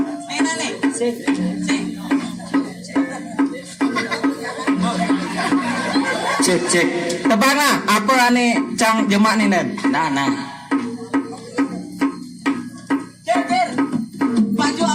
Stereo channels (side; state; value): both; identical; correlation 1.00